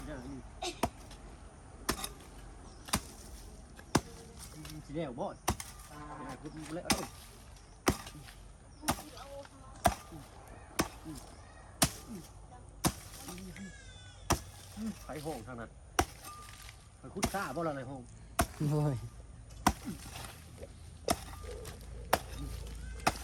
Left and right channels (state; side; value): identical; both; correlation 1.00